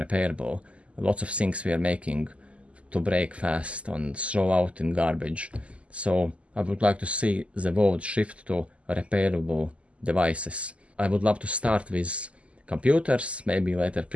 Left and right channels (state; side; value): late; left; 0.060 ms